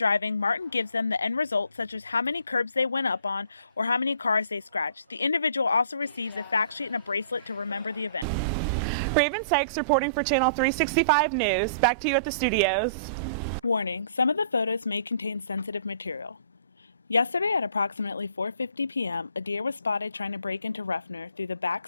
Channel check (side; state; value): both; inverted; correlation -0.53